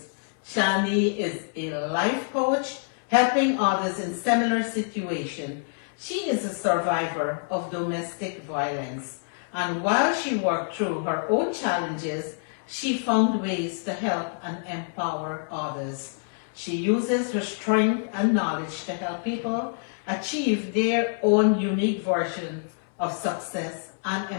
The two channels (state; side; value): silent; right; digital silence